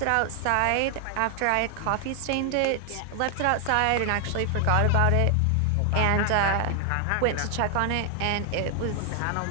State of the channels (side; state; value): both; different; correlation 0.00